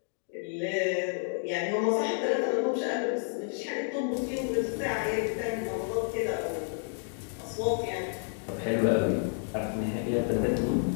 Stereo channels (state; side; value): silent; right; 58 dB below the other